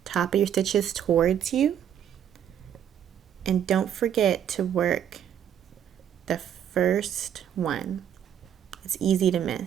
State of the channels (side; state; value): left; quieter; 9.4 dB